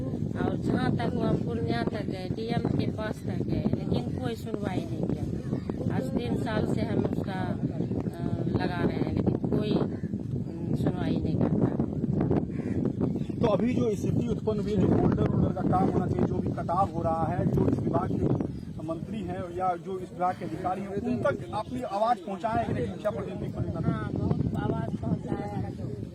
और जहाँ तक वो हम पूर्णिया तक गए, डीएम के पास तक गए, लेकिन कोई सुनवाई नहीं किया। आज 3 साल से हम उसका लगा रहे हैं, लेकिन कोई सुनवाई नहीं करता। तो अभी जो स्थिति उत्पन्न हुई है, जो बोल्डर का काम होना चाहिए, जो भी कटाव हो रहा है, जो इस विभाग के मंत्री हैं या जो इस विभाग के अधिकारी हैं, उन तक अपनी आवाज पहुंचाए कि नहीं? शिक्षा प्रतिनिधि को हाँ, बहुत आवाज पहुंचाया,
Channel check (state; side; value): identical; both; correlation 1.00